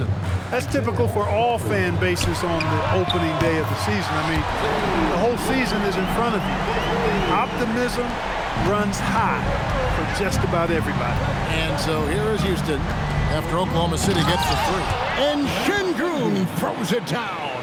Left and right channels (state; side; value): identical; both; correlation 1.00